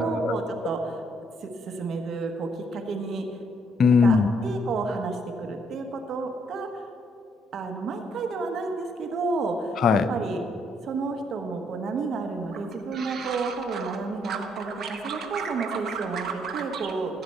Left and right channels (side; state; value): both; normal; correlation 0.70